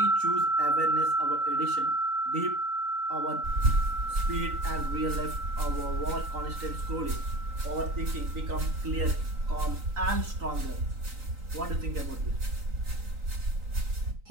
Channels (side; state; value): left; late; 3.9 ms